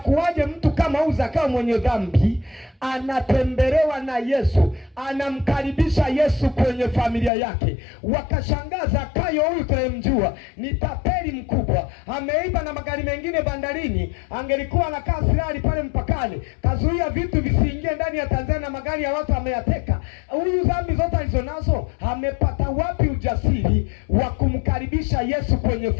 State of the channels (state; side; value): drops out; right; at 7.3 s